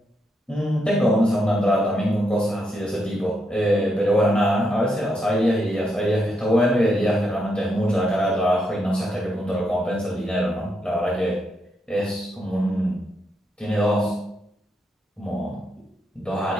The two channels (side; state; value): both; normal; correlation 0.80